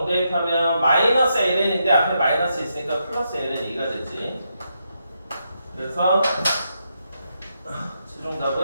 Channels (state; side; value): inverted; both; correlation -0.81